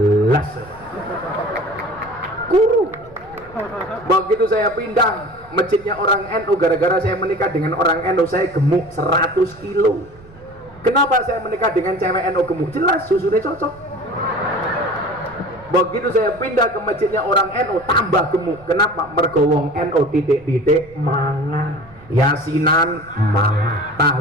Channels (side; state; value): right; noise; rumble, 23 dB below the sound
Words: kurus. Begitu saya pindah masjidnya orang NU, gara-gara saya menikah dengan orang NU, saya gemuk 100 kilo. Kenapa saya menikah dengan cewek NU gemuk? Jelas susunya cocok. Begitu saya pindah ke masjidnya orang NU, tambah gemuk. Kenapa? Mergo wong NU titik-titik mangan, yasinan mangan,